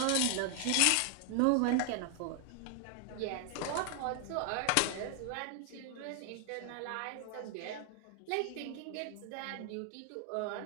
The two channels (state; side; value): different; both; correlation 0.00